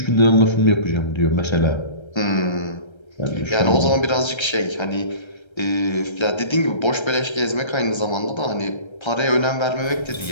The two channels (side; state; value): right; late; 1.3 ms